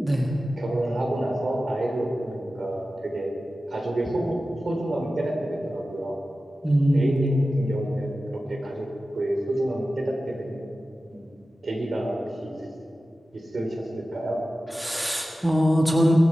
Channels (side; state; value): both; normal; correlation 0.94